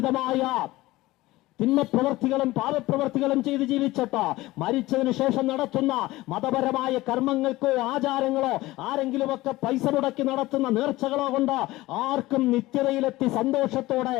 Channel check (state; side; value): quieter; right; 18.5 dB